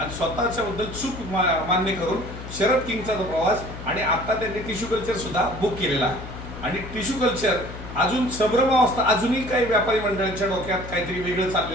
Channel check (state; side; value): noise; left; hum, 11 dB below the sound